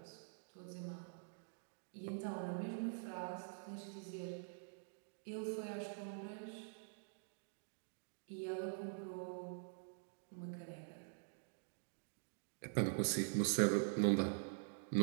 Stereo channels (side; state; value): left; silent; digital silence